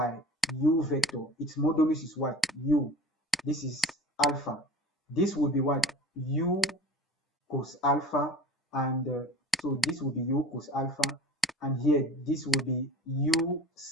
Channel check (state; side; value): normal; both; correlation 0.40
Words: u vector. Its modulus is what? U. This is alpha. This will be what? U cos alpha, and so this will be u cos alpha, and here this will be u